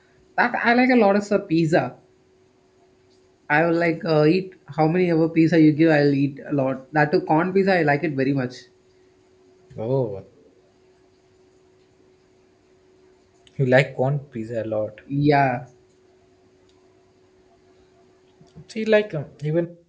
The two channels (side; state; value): both; identical; correlation 1.00